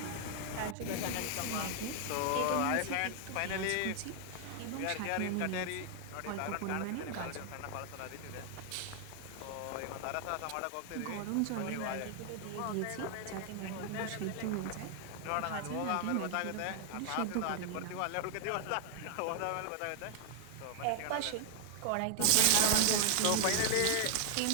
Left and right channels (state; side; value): different; both; correlation 0.00